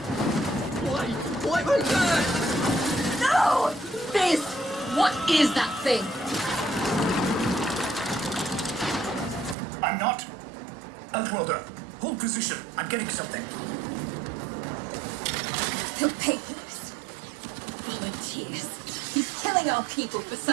What was that? No! This! What is that thing? I'm not. Outworlder, hold position. I'm getting something. He'll pay for this. Volunteers. He's killing our people for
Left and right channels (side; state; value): left; drops out; at 9.6 s